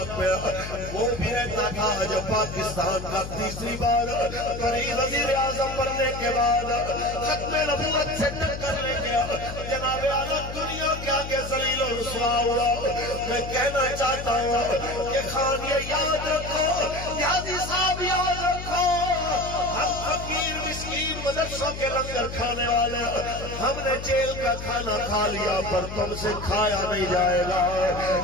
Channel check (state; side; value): noise; left; hum, 9 dB below the sound